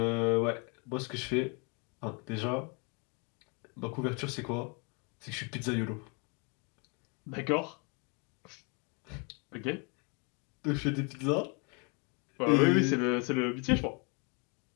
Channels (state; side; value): quieter; right; 33.9 dB